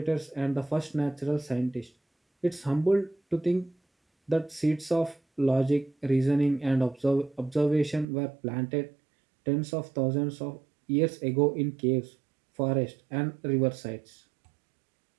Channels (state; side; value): drops out; left; at 8.1 s